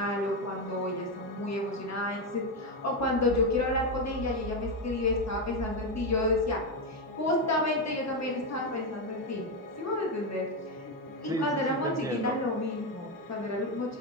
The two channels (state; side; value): normal; both; correlation 0.09